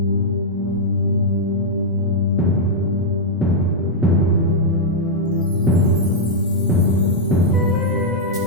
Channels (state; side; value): normal; both; correlation -0.04